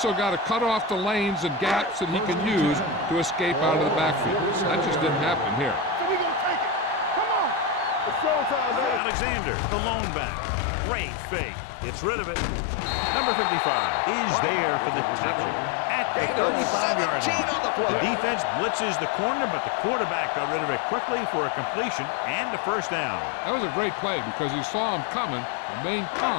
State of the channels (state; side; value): drops out; right; at 9.0 s